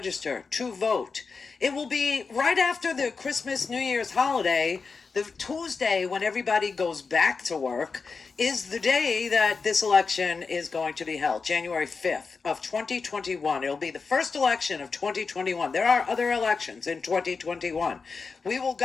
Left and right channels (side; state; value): right; quieter; 4.8 dB